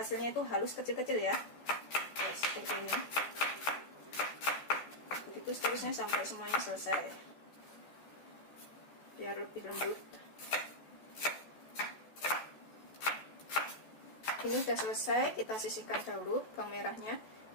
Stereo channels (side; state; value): right; late; 14 ms